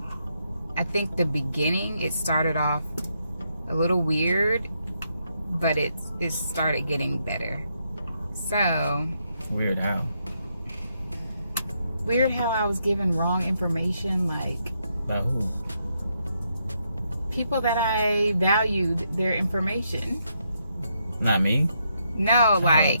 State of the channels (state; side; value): inverted; both; correlation -0.78